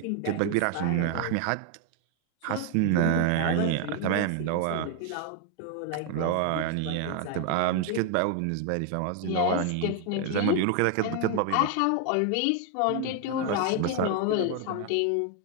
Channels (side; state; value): both; different; correlation 0.01